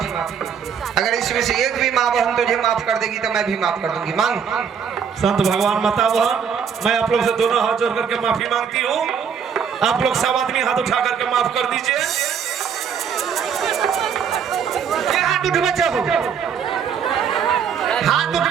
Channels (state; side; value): quieter; left; 7.3 dB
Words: अगर इसमें से एक भी माँ बहन तुझे माफ कर देगी तो मैं भी माफ कर दूंगी। मांग। संत भगवान माता बहन, मैं आप लोग से दोनों हाथ जोड़ करके माफी मांगती हूँ। आप लोग सब आदमी हाथ उठा करके माफ कर दीजिए। ये हाथ उठवे चाहो, हाथ